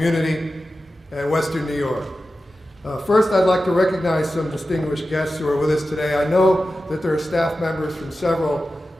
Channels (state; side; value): normal; both; correlation 0.93